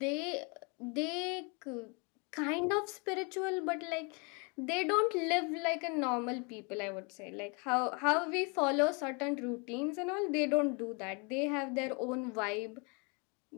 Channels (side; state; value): right; quieter; 32.8 dB